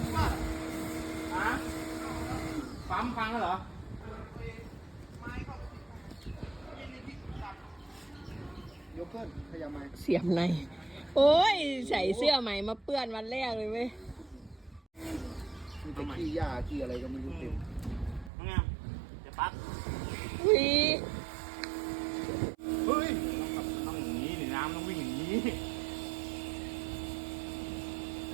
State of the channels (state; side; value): drops out; left; at 18.3 s